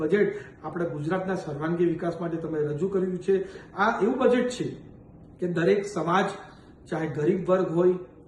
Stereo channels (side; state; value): both; identical; correlation 1.00